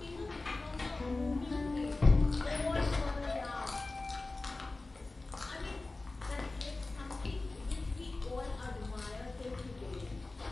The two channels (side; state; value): right; quieter; 3.2 dB